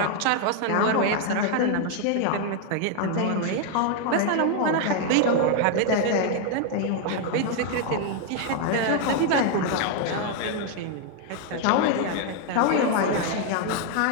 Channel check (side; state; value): both; different; correlation 0.00